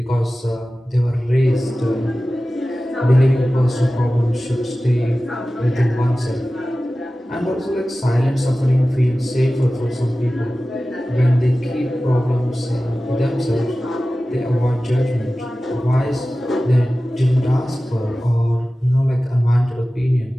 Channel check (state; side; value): normal; both; correlation 0.96